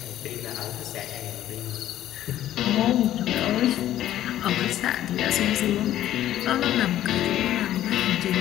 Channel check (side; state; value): right; quieter; 12.7 dB